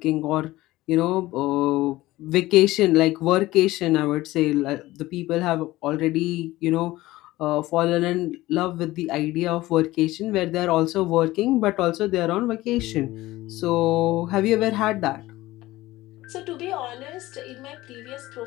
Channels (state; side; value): quieter; right; 17.7 dB